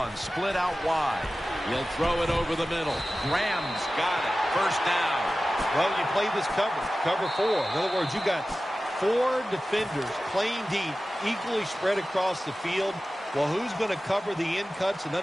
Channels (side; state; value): both; normal; correlation 0.95